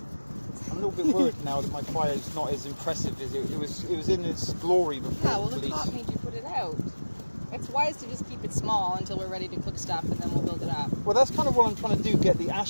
I'm a little bit worried now that my fire is not as impressive as it was in its glory before Yeah, well, the the police. cop made you put it out. It's wise to just keep it small until we're ready to cook stuff, and then we'll build it up. Well, that's kind of what I'm trying to do, get the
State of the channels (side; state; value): both; inverted; correlation -1.00